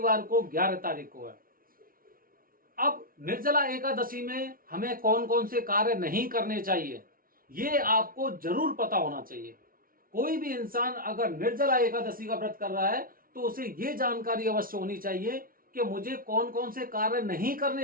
को 11 तारीख को है। अब निर्जला एकादशी में हमें कौन कौन से कार्य नहीं करने चाहिए ये आपको जरूर पता होना चाहिए। कोई भी इंसान अगर निर्जला एकादशी का व्रत कर रहा है तो उसे ये जानकारी अवश्य होनी चाहिए कि मुझे कौन कौन से कार्य नहीं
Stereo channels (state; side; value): late; left; 0.42 ms